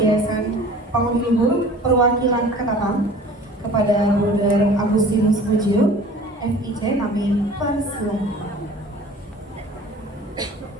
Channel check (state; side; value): normal; both; correlation 0.45